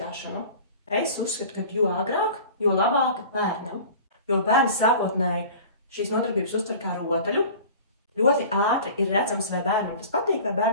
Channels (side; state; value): both; inverted; correlation -0.41